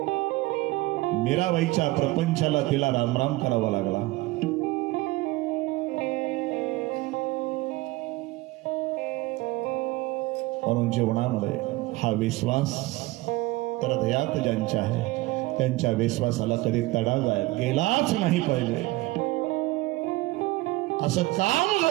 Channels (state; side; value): quieter; left; 20.1 dB